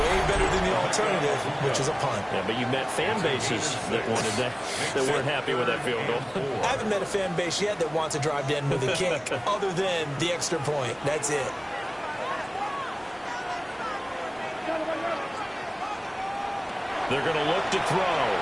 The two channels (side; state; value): both; identical; correlation 1.00